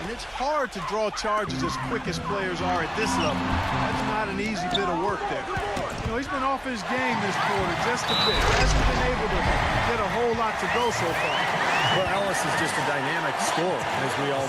And it's hard to draw charges as quick as players are at this level. That's not an easy bit of work there. You know, he's been off his game this quarter just a bit. Hasn't been able to get a whole lot to go so far. Well, Ellis is just a dynamic scorer, as we all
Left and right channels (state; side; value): identical; both; correlation 1.00